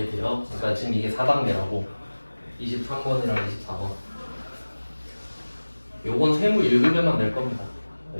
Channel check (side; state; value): both; inverted; correlation -1.00